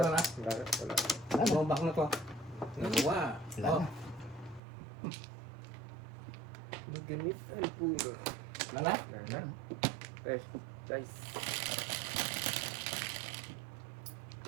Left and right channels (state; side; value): drops out; left; at 4.6 s